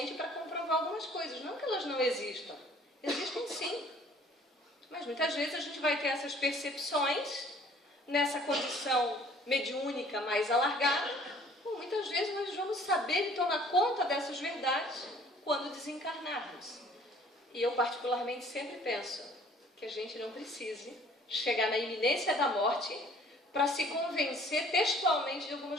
para comprovar algumas coisas. Não que elas não existam. Existem sim. Mas muitas vezes a gente vai ter essas percepções nessa condição mediúnica mais alargada. Muitas vezes nós vamos saber e tomar conta dessas verdades quando desencarnarmos. E eu particularmente sempre penso que a gente não precise chegar na iminência da morte para se convencer textualmente de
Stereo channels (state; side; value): normal; both; correlation 0.55